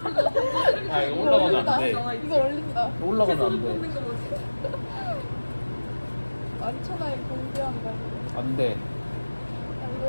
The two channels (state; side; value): inverted; both; correlation -1.00